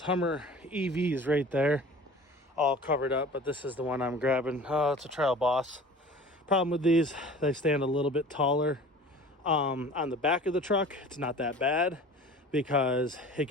Hummer EVs right there, all covered up, but this is the one I'm grabbing. Oh, it's a Trail Boss. Problem with these, they stand a little bit taller. On the back of the truck, it's not that bad, because it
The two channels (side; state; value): both; normal; correlation 0.43